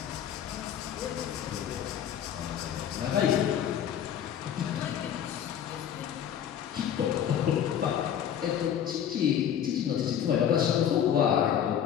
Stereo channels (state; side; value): quieter; right; 9.4 dB